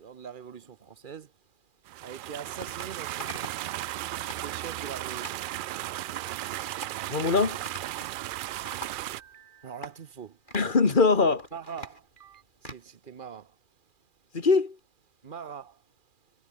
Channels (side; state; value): right; late; 2.4 ms